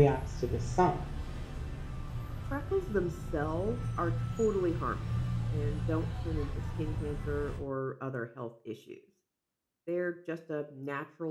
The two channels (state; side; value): identical; both; correlation 1.00